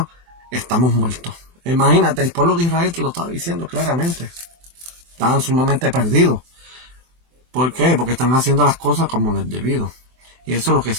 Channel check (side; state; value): left; late; 24 ms